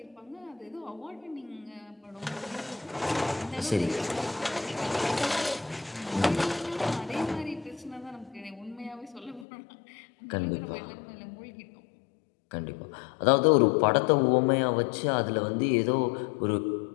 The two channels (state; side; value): drops out; right; at 9.5 s